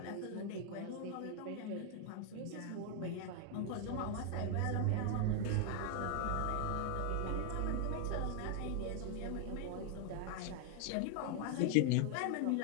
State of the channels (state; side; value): different; both; correlation 0.00